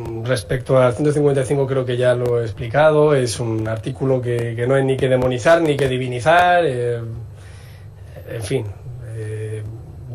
respecto al 155 creo que ya lo he explicado. Es un artículo que no hay ni que demonizar ni que divinizar. En fin,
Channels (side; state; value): both; identical; correlation 1.00